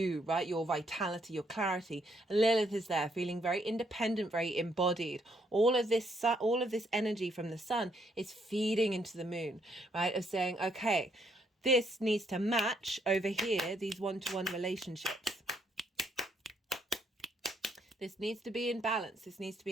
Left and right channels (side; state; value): both; normal; correlation 0.72